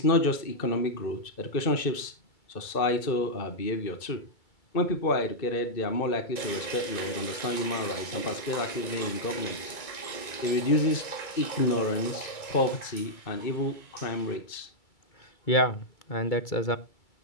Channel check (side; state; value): right; late; 2.3 ms